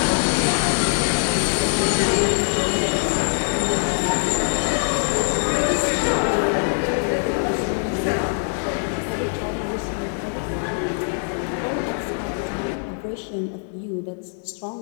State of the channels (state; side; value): silent; right; digital silence